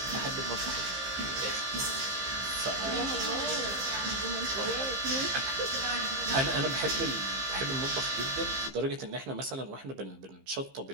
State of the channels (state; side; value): late; left; 15 ms